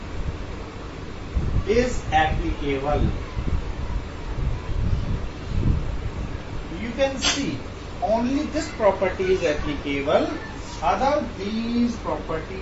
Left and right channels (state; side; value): identical; both; correlation 1.00